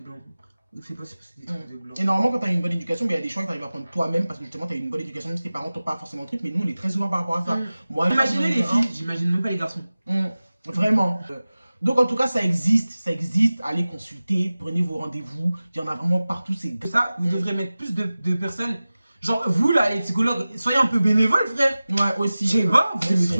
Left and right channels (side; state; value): both; inverted; correlation -0.97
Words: blanc. Fais pas ça parce que c'est des trucs de blanc. Et normalement, quand tu as une bonne éducation, il y a des choix que tu arrives à prendre toi-même parce que justement, tu as une bonne éducation, même si tes parents t'ont pas forcément le truc, mais nous, on est très ouverts par rapport à ça. Moi, Imaginez les filles, j'imagine même pas les garçons. Vraiment. Donc, en tout cas, ça existe, allez consulter, prenez vos rendez-vous, il y en a vraiment partout. C'est Ça, vous devrez mettre plus de personnes. Genre, vous là, les psychologues, soyez un peu bénévoles, frère. Ouais, aussi. Je sais pas, vous aimez